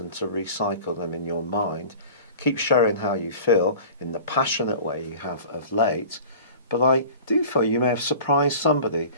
to recycle them in your mind. Keep sharing how you feel in the passionate way you have of late. But I do feel you may have surprised somebody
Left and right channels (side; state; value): both; inverted; correlation -0.41